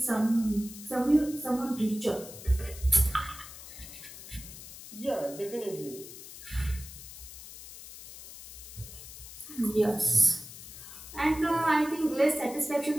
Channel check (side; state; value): left; noise; hiss, 14 dB below the sound